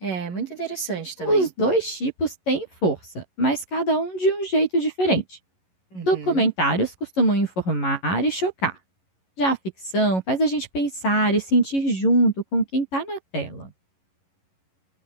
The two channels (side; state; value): right; late; 11 ms